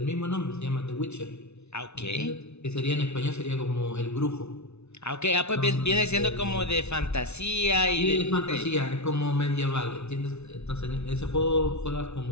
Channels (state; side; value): late; right; 0.81 ms